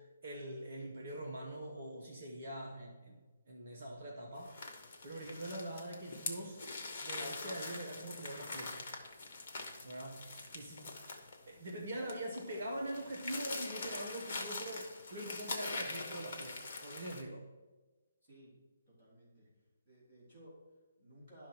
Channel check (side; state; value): both; inverted; correlation -0.75